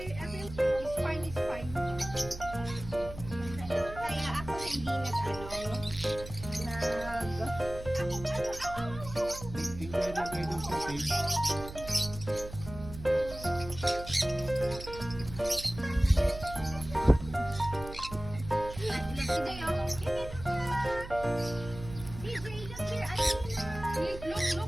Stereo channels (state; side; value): noise; right; hum, 12 dB below the sound